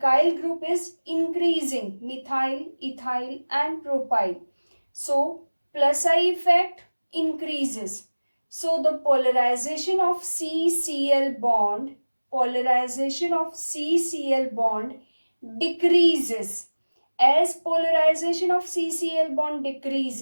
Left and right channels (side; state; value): both; inverted; correlation -1.00